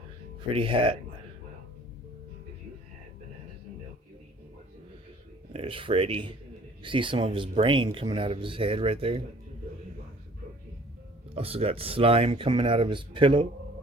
hat. There's Freddy. You see some of his brain coming out of his head right there. Also got slime coming out of his pillow.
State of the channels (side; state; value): both; normal; correlation 0.53